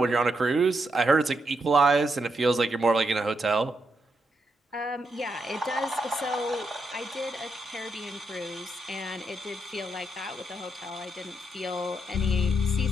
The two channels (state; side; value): normal; both; correlation 0.81